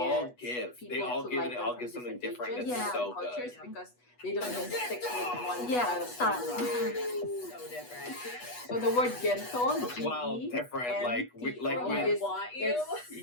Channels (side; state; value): right; late; 8.2 ms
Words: get give. They people all to give like and they them all from give something different different. ages, It's Yeah. so cultures, good. because they don't just stick with one Yeah, style of style. genre. So different. So the word gento, Wow, different. Like we like Oh, we. I want you.